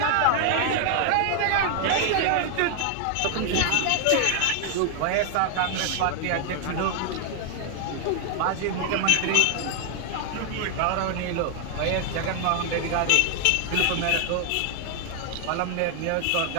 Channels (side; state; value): both; different; correlation 0.00